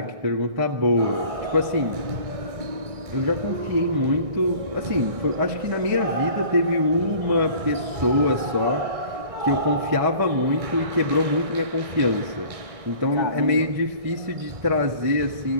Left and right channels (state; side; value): late; left; 1.6 ms